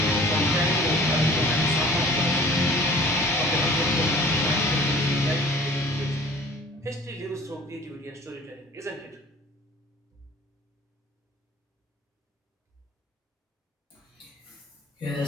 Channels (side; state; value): both; normal; correlation 0.48